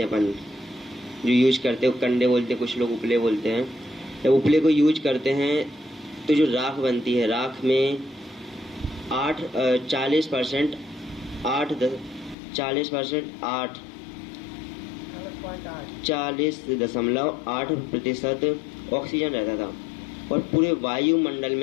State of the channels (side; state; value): right; drops out; at 12.4 s